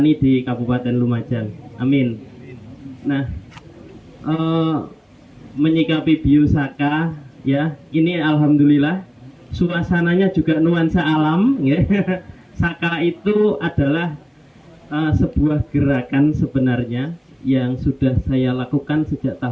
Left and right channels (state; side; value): identical; both; correlation 1.00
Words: di Kabupaten Lumajang. Amin. Nah, menyikapi Biosaka ya, ini alhamdulillah suasananya juga nuansa alam ya. Saka itu adalah sebuah gerakan sebenarnya yang sudah saya lakukan sejak